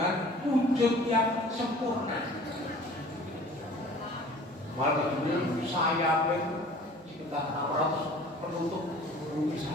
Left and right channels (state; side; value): normal; both; correlation 0.47